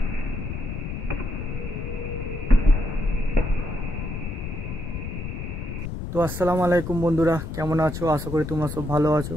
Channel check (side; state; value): left; noise; rumble, 6 dB below the sound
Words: তো আসসালামু আলাইকুম বন্ধুরা, কেমন আছো? আশা করি তোমরা সব ভালো আছো।